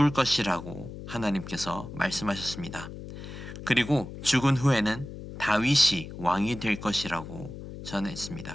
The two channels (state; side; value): noise; left; hum, 11 dB below the sound